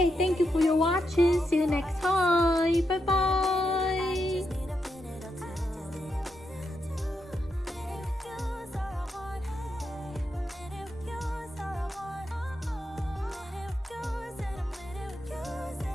thank you for your watching. See you next time. Bye bye.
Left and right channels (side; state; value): both; normal; correlation 0.83